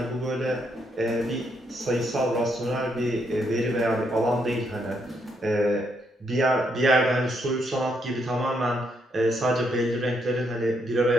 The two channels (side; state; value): both; normal; correlation 0.76